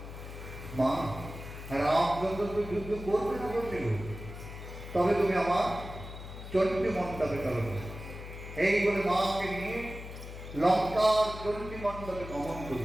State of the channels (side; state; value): left; noise; hum, 11 dB below the sound